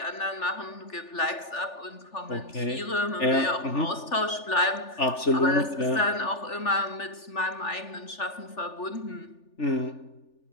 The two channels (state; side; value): late; right; 3.4 ms